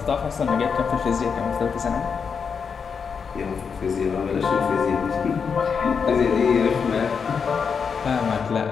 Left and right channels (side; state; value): right; quieter; 6.1 dB